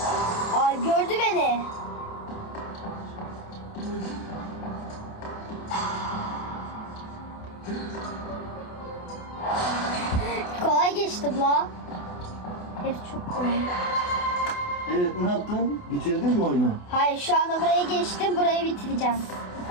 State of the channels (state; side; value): late; right; 28 ms